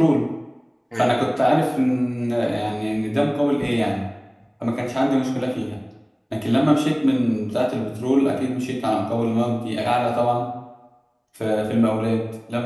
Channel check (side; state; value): both; identical; correlation 1.00